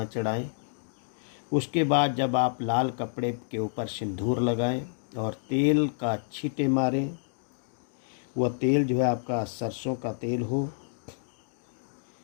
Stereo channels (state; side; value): silent; right; digital silence